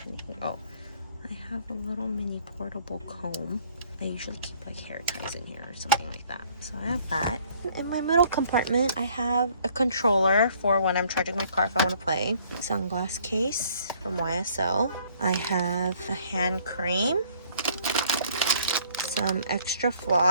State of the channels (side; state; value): both; inverted; correlation -0.60